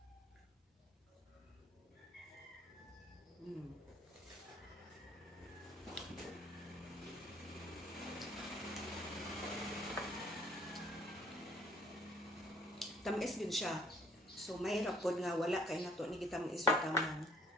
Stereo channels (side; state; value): both; normal; correlation 0.60